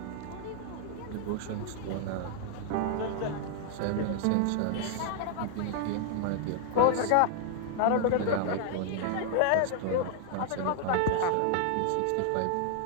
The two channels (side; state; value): both; different; correlation 0.00